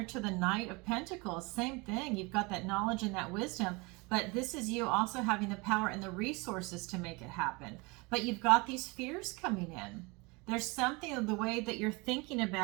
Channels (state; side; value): quieter; left; 26.7 dB